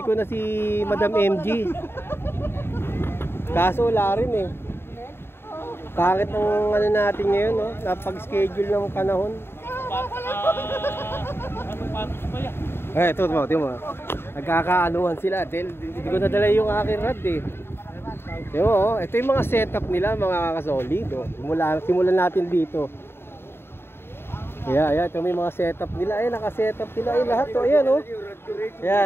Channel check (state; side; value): late; right; 0.11 ms